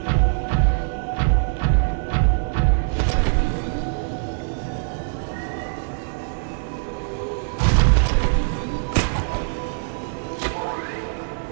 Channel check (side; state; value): left; silent; 59 dB below the other